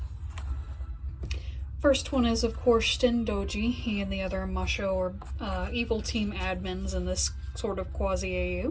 First one is, of course, Shin Doji. He and the other Masho or evil team admins in this sort of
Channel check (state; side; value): identical; both; correlation 1.00